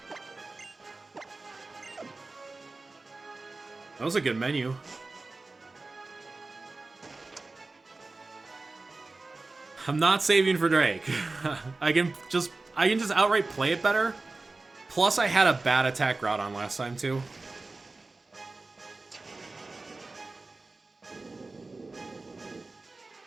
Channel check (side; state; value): left; quieter; 3.4 dB